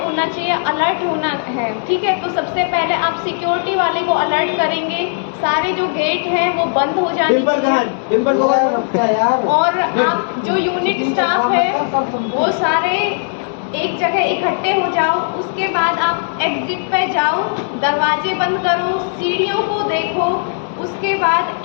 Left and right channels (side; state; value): right; silent; digital silence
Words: होना चाहिए, अलर्ट होना है, ठीक है। तो सबसे पहले आप सिक्योरिटी वाले को अलर्ट करेंगे, सारे जो गेट हैं वो बंद हो जाने और आप जो यूनिट स्टाफ है वो सारे एक जगह इकट्ठे हो जाओ। उसके बाद आप एग्जिट पे जाओ, दरवाजे बंद करो, सीढ़ियों को देखो। उसके बाद